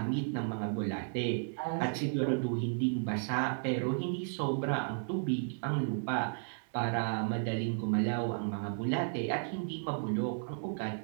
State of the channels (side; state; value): left; silent; digital silence